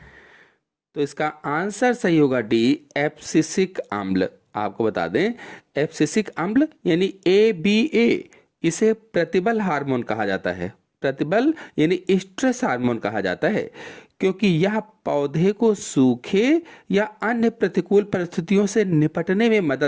तो इसका आंसर सही होगा डी, एब्सिसिक अम्ल। आपको बता दें, एब्सिसिक अम्ल यानी ABA, इसे प्रतिबल हार्मोन कहा जाता है। प्रतिबल यानी स्ट्रेस हार्मोन कहा जाता है, क्योंकि यह पौधे को सूखे या अन्य प्रतिकूल परिस्थितियों से निपटने में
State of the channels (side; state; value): both; identical; correlation 1.00